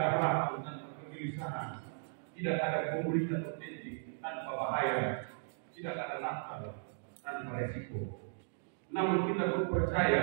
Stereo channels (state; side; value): silent; left; digital silence